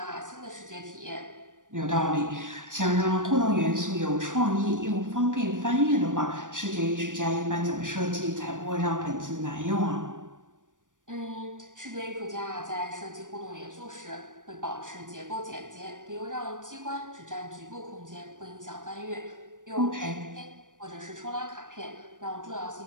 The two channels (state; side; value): late; left; 0.87 ms